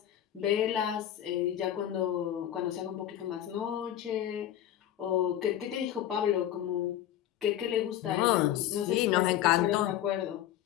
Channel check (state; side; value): quieter; right; 11.7 dB